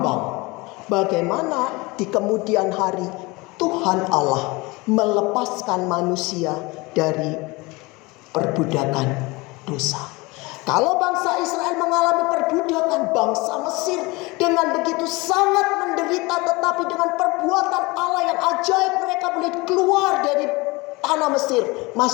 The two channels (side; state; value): right; quieter; 24.2 dB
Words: bagaimana di kemudian hari Tuhan Allah melepaskan manusia dari perbudakan dosa. Kalau bangsa Israel mengalami perbudakan, bangsa Mesir dengan begitu sangat menderita, tetapi dengan perbuatan Allah yang ajaib mereka boleh keluar dari tanah Mesir,